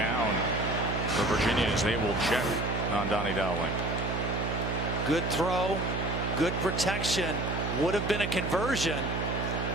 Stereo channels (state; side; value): noise; right; hum, 2 dB below the sound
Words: for Virginia as they will check on Donnie Dowling. Good throw. Good protection. Would have been a conversion.